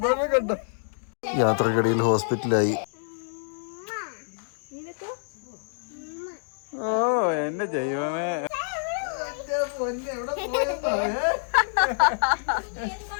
കണ്ടോ. യാത്രക്കിടയിൽ ഹോസ്പിറ്റലായി. ഓ എന്റെ ദൈവമേ,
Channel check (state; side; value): silent; right; digital silence